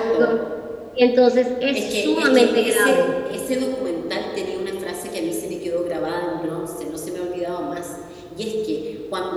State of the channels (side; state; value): both; identical; correlation 1.00